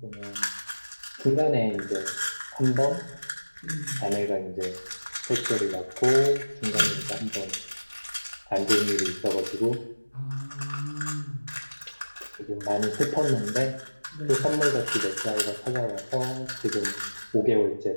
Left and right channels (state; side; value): inverted; both; correlation -1.00